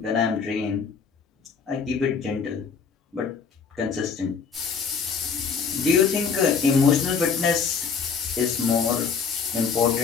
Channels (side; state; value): right; quieter; 5.8 dB